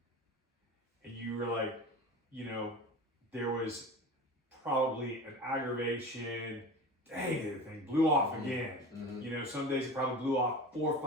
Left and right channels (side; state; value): both; normal; correlation 0.33